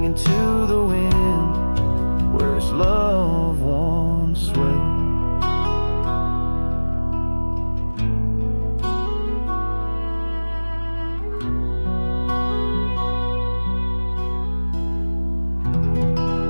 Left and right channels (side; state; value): both; inverted; correlation -1.00